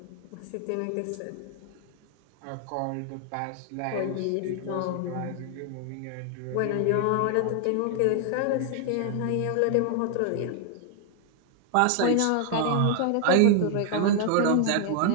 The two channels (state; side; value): different; both; correlation 0.00